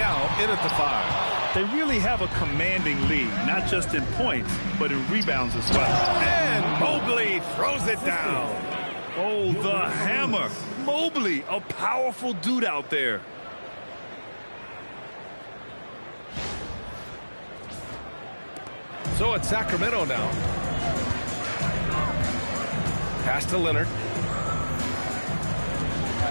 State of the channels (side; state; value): both; inverted; correlation -1.00